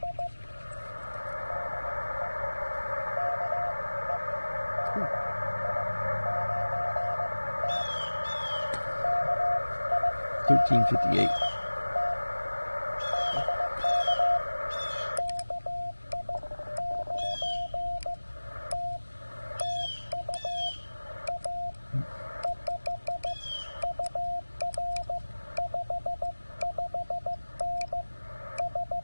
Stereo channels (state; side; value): inverted; both; correlation -1.00